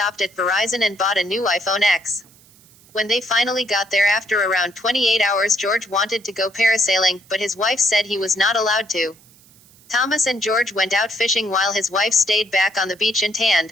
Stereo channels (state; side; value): noise; right; hiss, 27 dB below the sound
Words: at Verizon and bought a new iPhone X. When they finally got there after around 28 hours, George wanted to go parasailing, but his wife said he was not allowed to. Thomas and George went out fishing while his wife stayed back on the beach and tanned.